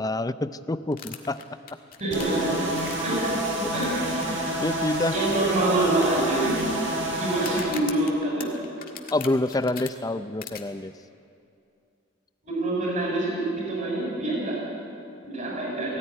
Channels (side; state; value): both; normal; correlation 0.39